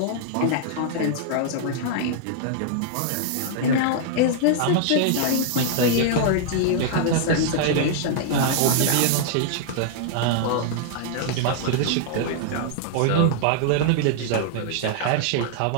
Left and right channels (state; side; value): different; both; correlation -0.01